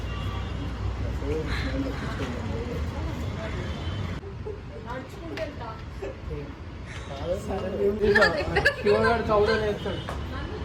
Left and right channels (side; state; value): both; identical; correlation 1.00